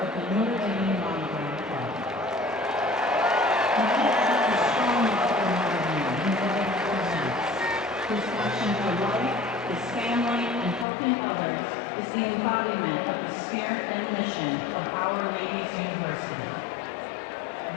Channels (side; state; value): right; drops out; at 10.9 s